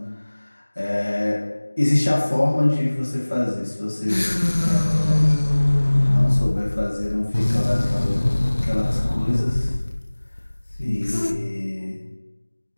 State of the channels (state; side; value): inverted; both; correlation -1.00